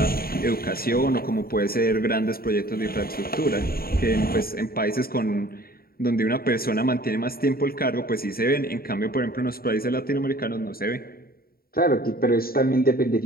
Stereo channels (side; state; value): right; late; 0.43 ms